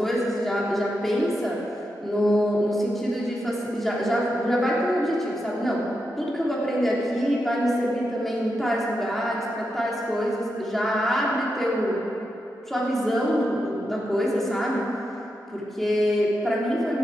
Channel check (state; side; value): normal; both; correlation 0.86